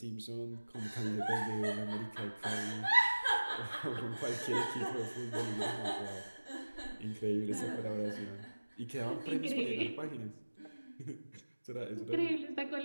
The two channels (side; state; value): both; inverted; correlation -1.00